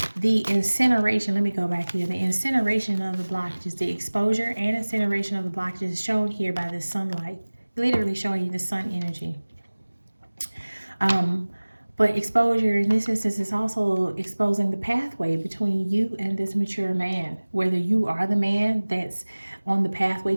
the incineration, let me go back here. The incineration of the blockages, the exposure and incineration of the blockages is shown here by the sunlight, literally showing you the sun energy. But exposure in this instance is also exposing the pathway between you and this mature man. Whether you are the man that's on the pathway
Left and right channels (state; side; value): inverted; both; correlation -1.00